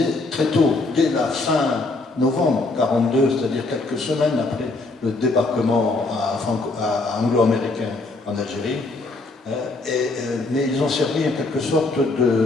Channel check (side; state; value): right; quieter; 3.2 dB